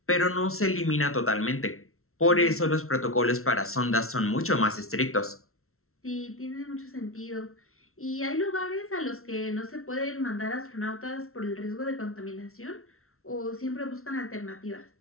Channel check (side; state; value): right; late; 0.62 ms